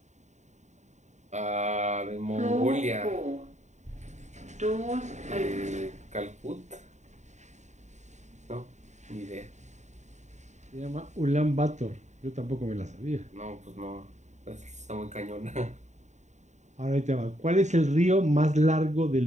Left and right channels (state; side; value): late; left; 0.34 ms